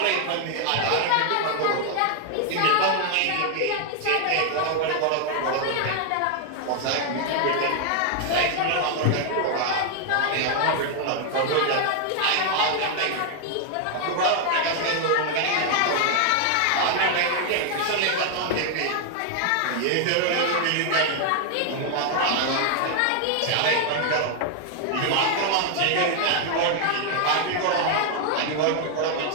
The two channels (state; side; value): different; both; correlation 0.00